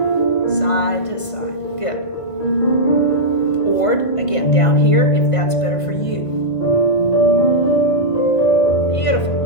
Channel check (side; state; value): right; late; 1.3 ms